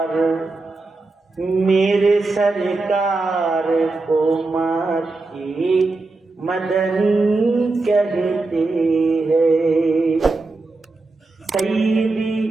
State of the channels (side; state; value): left; quieter; 3.4 dB